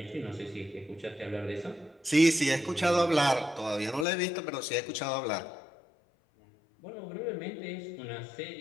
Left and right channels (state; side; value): drops out; right; at 4.0 s